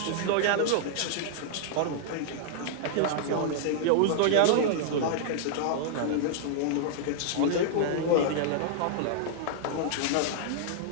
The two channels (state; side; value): different; both; correlation -0.01